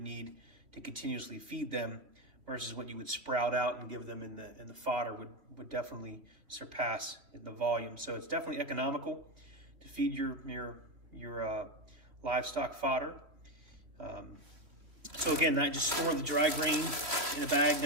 need to continuously feed them versus what you would sprout out and give them in the fodder would definitely surpass the volume. So it's definitely economical to feed your livestock fodder. So again, I just store the dry grain in a bag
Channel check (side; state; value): left; late; 3.1 ms